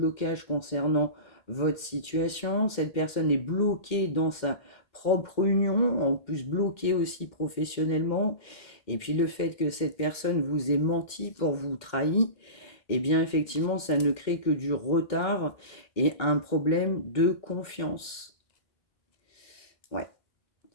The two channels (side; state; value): right; late; 2.1 ms